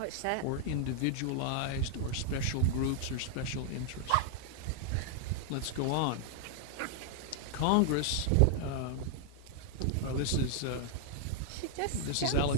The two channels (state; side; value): different; both; correlation 0.00